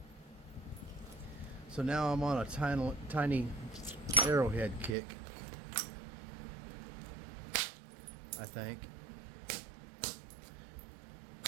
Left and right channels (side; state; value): left; drops out; at 5.0 s